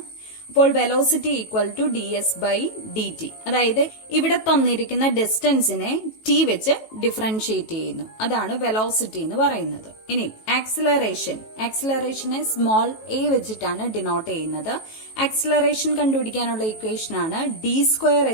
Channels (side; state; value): right; late; 18 ms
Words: അപ്പോൾ velocity equal to D S by D T, അതായത് ഇവിടെ തന്നിരിക്കുന്ന ഡിസ്റ്റൻസിനെ ടി വെച്ച് ഡിഫറൻഷിയേറ്റ് ചെയ്യുന്നു, അതാണ് വെലോസിറ്റി എന്ന് പറയുന്നത്. ഇനി ആക്സിലറേഷനെ സ്മോൾ എ വെച്ചിട്ടാണ് ഡിനോട്ട് ചെയ്യുന്നത്. ആക്സിലറേഷൻ കണ്ടുപിടിക്കാനുള്ള ഇക്വേഷൻ ആണ് D square